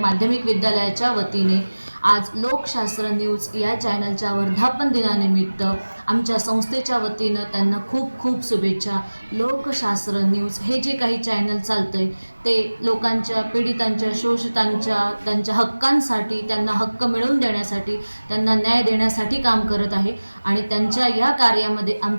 विद्यालयाच्या वतीने आज लोकशास्त्र न्यूज या चॅनलच्या वर्धापन दिनानिमित्त आमच्या संस्थेच्या वतीनं त्यांना खूप खूप शुभेच्छा। लोकशास्त्र न्यूज हे जे काही चॅनल चालतंय ते लोकांच्या पीडितांच्या शोषितांच्या त्यांच्या हक्कांसाठी त्यांना हक्क मिळवून देण्यासाठी त्यांना न्याय देण्यासाठी काम करत आहे आणि त्यांच्या या कार्यामध्ये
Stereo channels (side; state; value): both; inverted; correlation -1.00